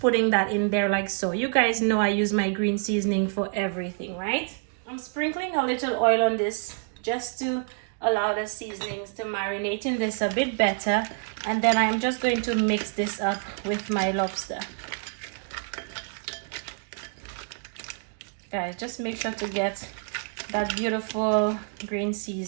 that in there like so. You guys know I use my green seasoning for everything, right? I'm sprinkling a little oil on this just to allow the seasonings to marinate in this a bit better, and then I'm just going to mix this up with my lobster. Guys, just make sure to get that beautiful green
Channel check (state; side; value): silent; left; 60 dB below the other